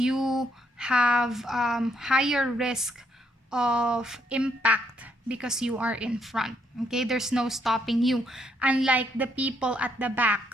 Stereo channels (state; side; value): normal; both; correlation 0.73